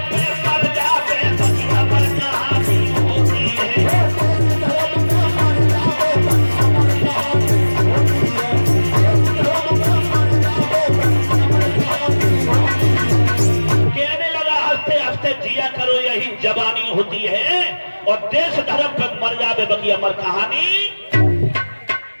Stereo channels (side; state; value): both; inverted; correlation -1.00